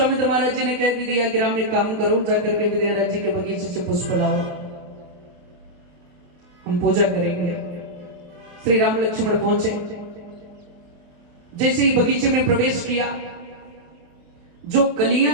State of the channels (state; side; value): late; left; 28 ms